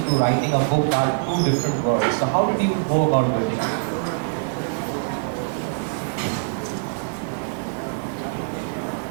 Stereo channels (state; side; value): silent; left; digital silence